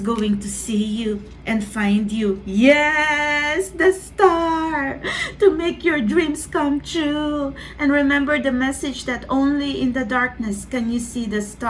to see you and find you. Yes, the star to make your dreams come true. And remember the message that only in the darkness can you see the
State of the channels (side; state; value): both; identical; correlation 1.00